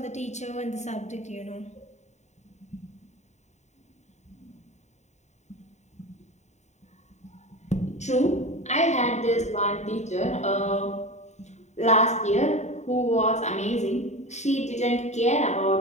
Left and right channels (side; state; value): right; late; 0.33 ms